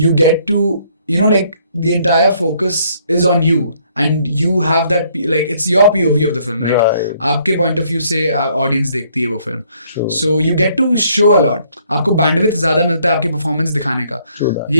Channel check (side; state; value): both; inverted; correlation -0.66